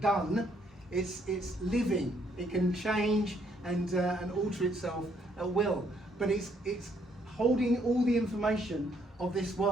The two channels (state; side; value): normal; both; correlation 0.69